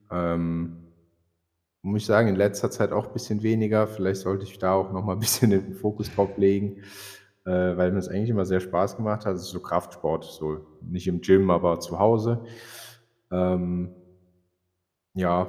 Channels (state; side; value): identical; both; correlation 1.00